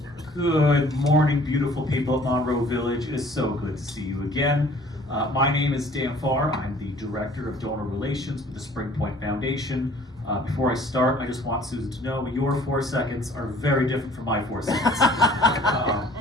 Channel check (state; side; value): normal; both; correlation 0.53